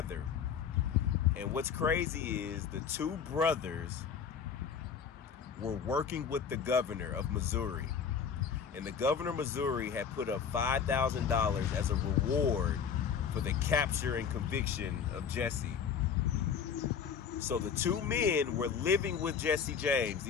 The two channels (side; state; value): right; quieter; 7.0 dB